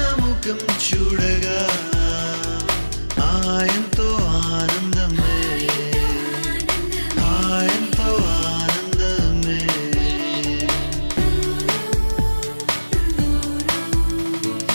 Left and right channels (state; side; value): inverted; both; correlation -1.00